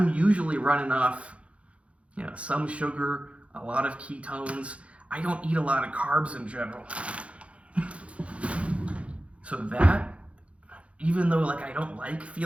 usually running off, you know, some sugar, a lot of ketones. I don't eat a lot of carbs in general. So that, even though like I don't like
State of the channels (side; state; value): left; late; 0.062 ms